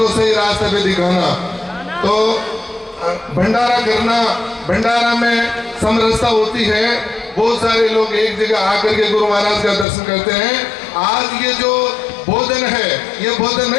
सही रास्ते पे दिखाना। तो भंडारा करना, भंडारा में समरसता होती है। बहुत सारे लोग एक जगह आकर के गुरु महाराज का दर्शन करते हैं। आज ये जो भोजन है, ये भोजन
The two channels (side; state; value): right; drops out; at 9.9 s